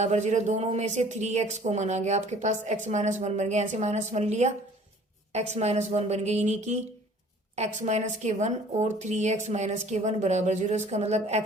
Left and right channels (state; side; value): normal; both; correlation 0.52